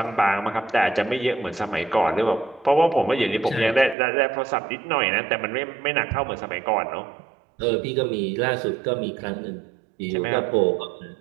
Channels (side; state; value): left; drops out; at 4.0 s